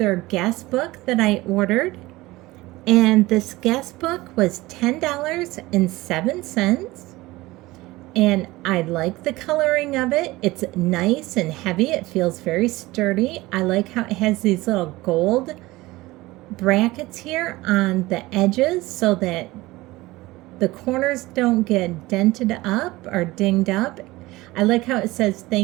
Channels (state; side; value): quieter; left; 19.6 dB